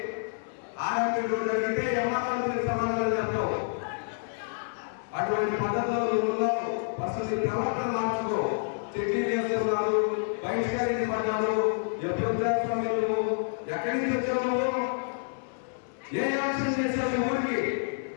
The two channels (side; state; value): right; silent; 59 dB below the other